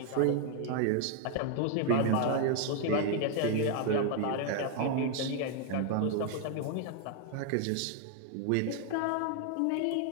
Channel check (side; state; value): both; different; correlation 0.00